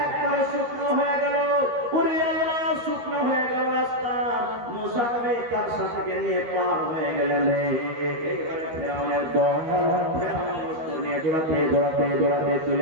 তার সাথে নিয়ে পার হয়ে গেলেন। এইবারে ফেরাউনের দল নিয়ে দৌড়াতে দৌড়াতে দৌড়াতে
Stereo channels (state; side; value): late; left; 13 ms